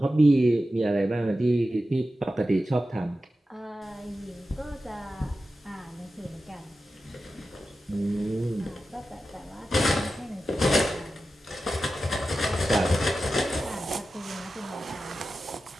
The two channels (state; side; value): normal; both; correlation 0.92